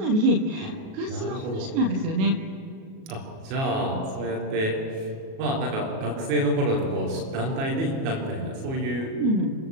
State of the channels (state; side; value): late; left; 37 ms